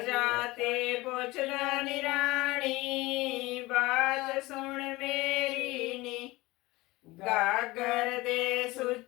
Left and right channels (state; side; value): quieter; right; 20.7 dB